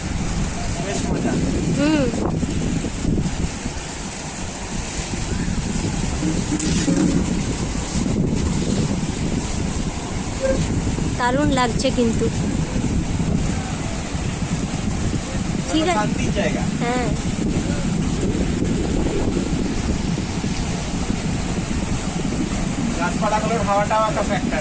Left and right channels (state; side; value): identical; both; correlation 1.00